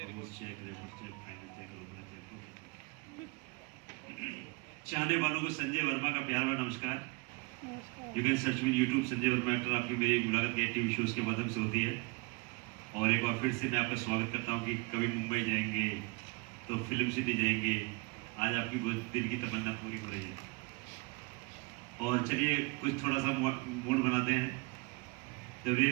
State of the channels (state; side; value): quieter; left; 28.8 dB